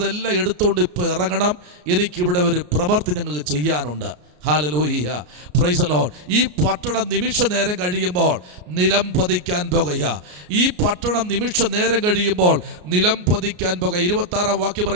എടുത്തുകൊണ്ട് ഇപ്പോൾ ഇറങ്ങണം. എനിക്കിവിടെ ഒരു പ്രവൃത്തി ഞങ്ങൾക്ക് ചെയ്യാനുണ്ട്. Hallelujah, praise the Lord. ഈ പട്ടണം നിമിഷ നേരം കഴിയുമ്പോൾ നിലം പതിക്കാൻ പോകുക. ഈ പട്ടണം നിമിഷ നേരം കഴിയുമ്പോൾ നിലം പതിക്കാൻ പോകുക. 26 വാക്യം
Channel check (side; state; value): left; late; 33 ms